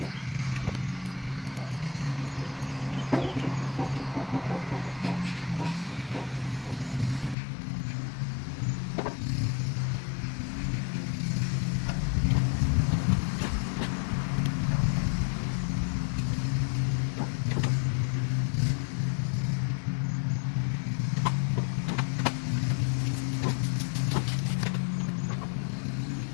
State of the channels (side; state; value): right; drops out; at 7.4 s